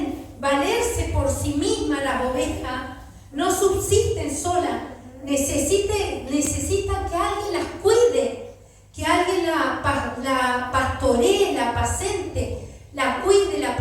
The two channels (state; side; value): identical; both; correlation 1.00